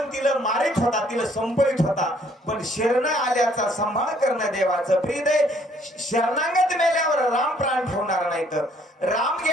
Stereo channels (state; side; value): normal; both; correlation 0.63